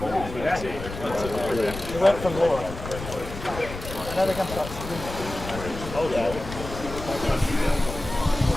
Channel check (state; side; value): noise; left; rumble, 10 dB below the sound